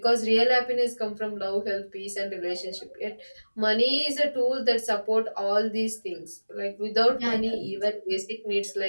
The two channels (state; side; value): inverted; both; correlation -1.00